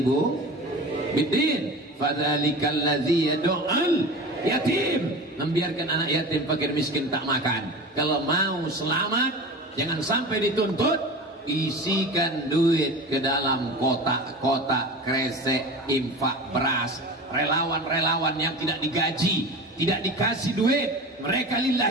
biddin fadzalikal ladzi yad'ul yatim. Membiarkan anak yatim fakir miskin tak makan. Kalau mau selamat, jangan sampai dituntut, isikan duit ke dalam kotak-kotak kresek infak beras. Relawan-relawan yang tidak digaji, tidak dikasih duit, mereka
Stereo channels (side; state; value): both; normal; correlation 0.33